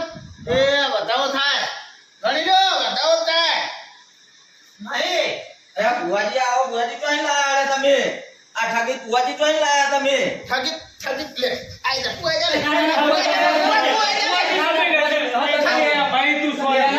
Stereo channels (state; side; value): identical; both; correlation 1.00